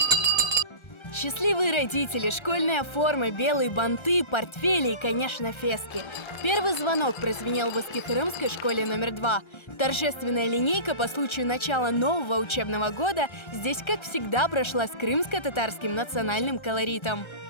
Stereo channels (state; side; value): late; right; 1.3 ms